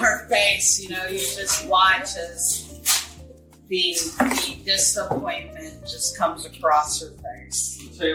her face, you just watch as the disappointment just comes across her face. I'll tell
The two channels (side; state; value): both; identical; correlation 1.00